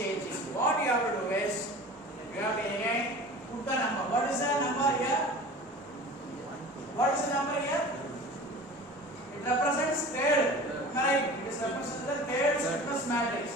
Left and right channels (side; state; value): both; normal; correlation 0.39